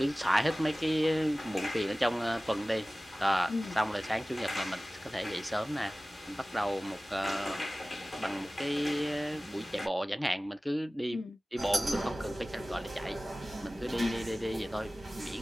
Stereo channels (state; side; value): normal; both; correlation 0.97